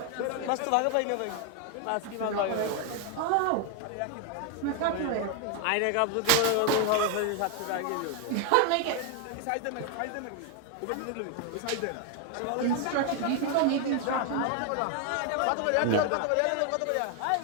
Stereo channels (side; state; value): both; different; correlation 0.01